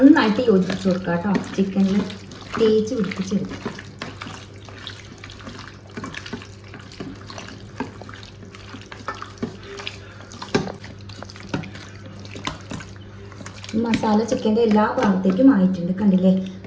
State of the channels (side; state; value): both; identical; correlation 1.00